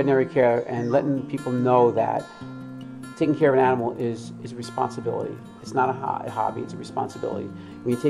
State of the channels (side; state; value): both; identical; correlation 1.00